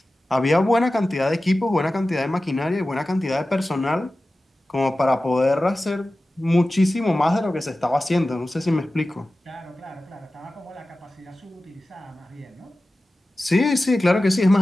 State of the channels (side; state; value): both; normal; correlation 0.95